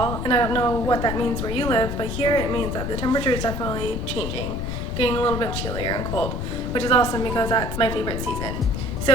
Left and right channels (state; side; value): noise; left; rumble, 4 dB below the sound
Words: and I don't know what that means where you live, but here it means that the temperature is definitely changing, getting a little bit chillier and cold, which is awesome because that's my favorite season.